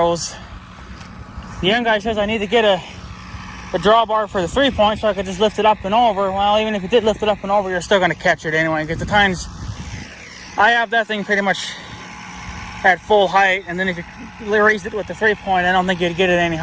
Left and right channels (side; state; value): both; identical; correlation 1.00